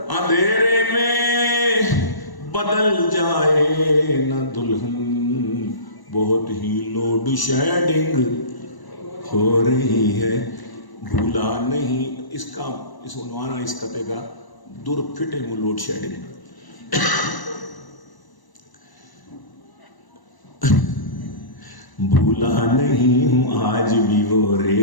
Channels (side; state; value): right; late; 1.0 ms